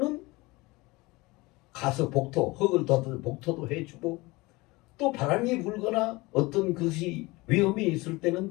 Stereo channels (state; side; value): quieter; right; 22.6 dB